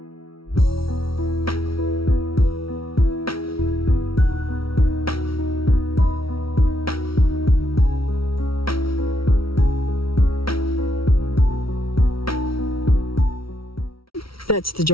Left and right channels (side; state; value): right; late; 0.75 ms